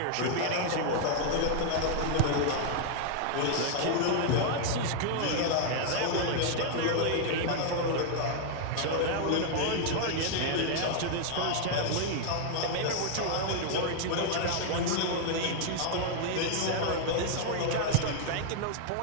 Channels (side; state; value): both; different; correlation 0.00